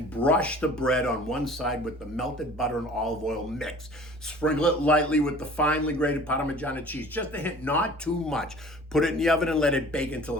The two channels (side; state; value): both; normal; correlation 0.46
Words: brush the bread on one side with the melted butter and olive oil mix. Sprinkle it lightly with the finely grated Parmegiana cheese, just a hint, not too much. Put it in the oven and let it bake until